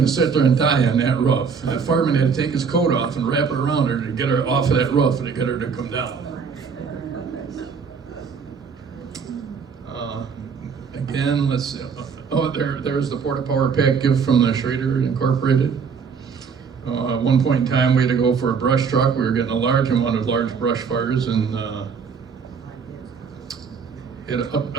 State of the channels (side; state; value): left; quieter; 6.0 dB